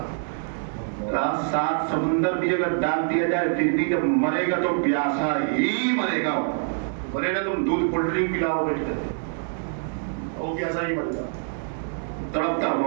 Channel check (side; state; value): left; silent; digital silence